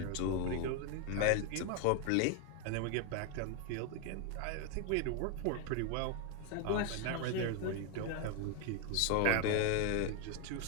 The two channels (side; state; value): both; different; correlation 0.01